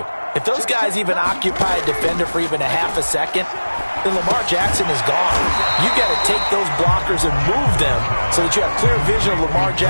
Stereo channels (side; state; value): both; inverted; correlation -1.00